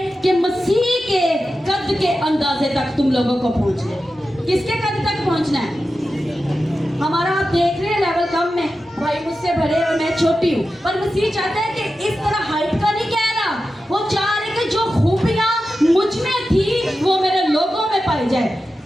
कि मसीह के कद के अंदाजे तक तुम लोगों को पहुंचना है। किसके कद तक पहुंचना है? हमारा आप देख रहे हैं लेवल कम में, भाई मुझसे बड़े और मैं छोटी हूँ, पर मसीह चाहता है कि इस तरह हाइट का नहीं कह रहा, वो चाह रहे कि जो खूबियां मुझ में थी वो मेरे लोगों में पाई जाए।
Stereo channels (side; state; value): both; normal; correlation 0.92